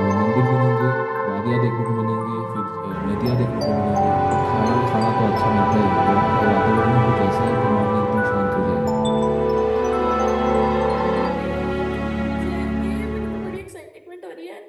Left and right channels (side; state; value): both; identical; correlation 1.00